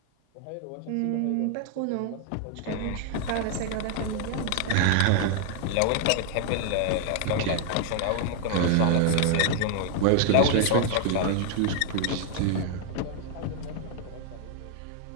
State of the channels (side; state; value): both; different; correlation 0.00